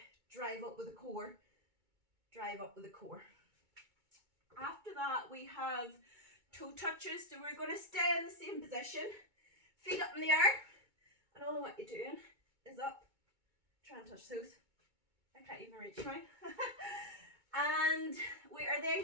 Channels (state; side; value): late; left; 2.2 ms